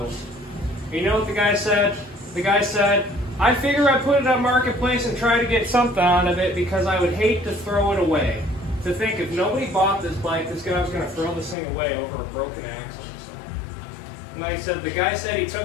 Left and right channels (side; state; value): right; drops out; at 11.6 s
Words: You know what the guy said? The guy said, I figure I put it on Marketplace and try to get something out of it because I would hate to throw it away. To think if nobody bought this bike, this guy was going to throw this thing away over a broken axle. So. And like I said, the guy said he